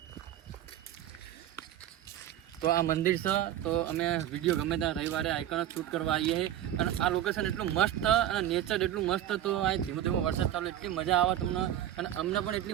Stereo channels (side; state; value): left; quieter; 11.7 dB